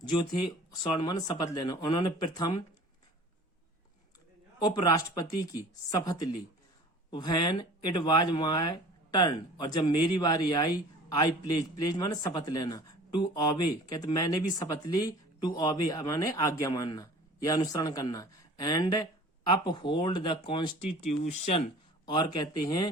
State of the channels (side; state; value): both; normal; correlation 0.45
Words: जो थे, स्वर्ण माने शपथ लेना, उन्होंने प्रथम उपराष्ट्रपति की शपथ ली। When it was my turn, और जब मेरी बारी आई, आई प्लेज माने शपथ लेना, टू ओबे कहते मैंने भी शपथ ली, टू ओबे माने आज्ञा मानना या अनुसरण करना, एंड अपहोल्ड द कॉन्स्टिट्यूशन, और कहते